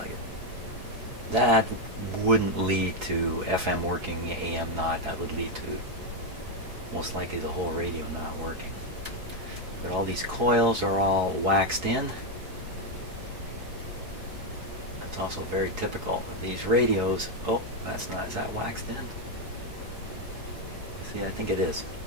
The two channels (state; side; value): late; left; 4.7 ms